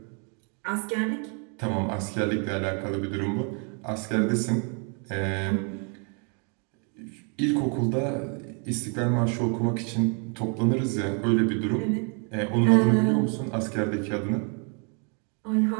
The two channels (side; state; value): left; quieter; 38.2 dB